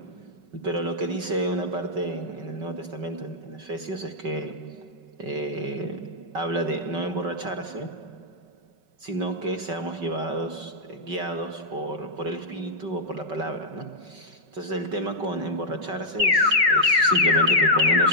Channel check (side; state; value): left; late; 5.3 ms